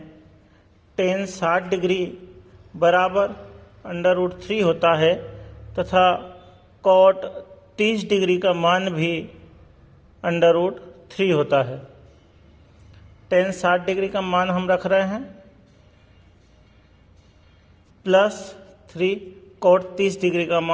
tan 60 डिग्री बराबर √3 होता है तथा cot 30 डिग्री का मान भी √3 होता है। tan 60 डिग्री का मान हम रख रहे हैं +3, cot 30 डिग्री का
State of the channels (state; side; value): identical; both; correlation 1.00